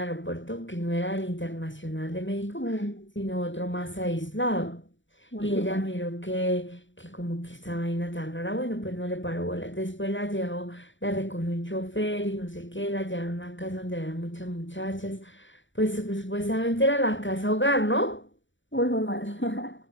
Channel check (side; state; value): right; late; 0.55 ms